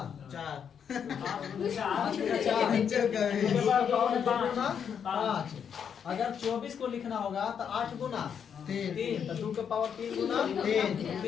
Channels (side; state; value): right; quieter; 7.6 dB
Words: 5। अगर 24 को लिखना होगा तो 8 गुना 3, तो 2 के पावर 3 गुना